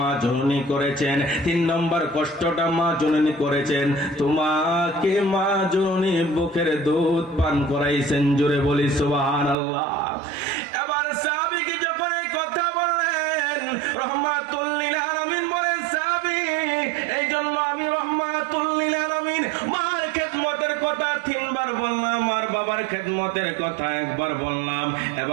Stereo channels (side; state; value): left; drops out; at 9.6 s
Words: জননী করেছেন? তিন নম্বর কষ্টটা মা জননী করেছেন, তোমাকে মা জননী বুকের দুধ পান করাইছেন। জোরে বলি সুবহানাল্লাহ। এবার সাহাবীকে যখন এই কথা বললেন, রহমাতুল লিল আলামিন বলেন, সাহাবী, এই জন্য আমি রহমাতুল লিল আলামিন মার খেদমতের কথা তিনবার বললাম, আর বাবার খেদমতের কথা একবার বললাম।